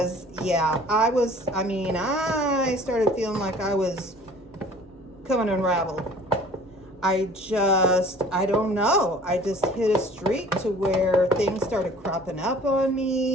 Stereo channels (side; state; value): both; normal; correlation 0.49